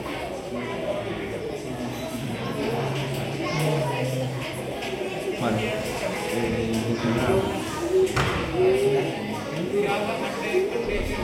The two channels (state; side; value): identical; both; correlation 1.00